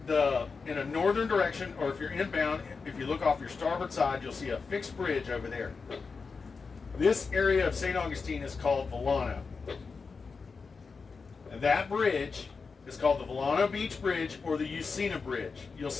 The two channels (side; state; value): right; quieter; 4.8 dB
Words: in a northern direction, or if you're inbound, if you look off your starboard side, you'll see a fixed bridge over there. This area of St. Augustine is called Volano. And that bridge is called the Volano Beach Bridge or the Usina Bridge. You'll